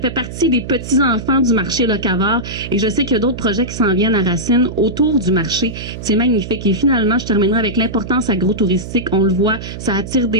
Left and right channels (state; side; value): noise; right; hum, 10 dB below the sound